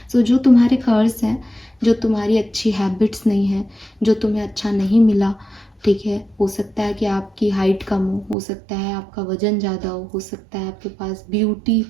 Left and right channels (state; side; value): drops out; left; at 8.3 s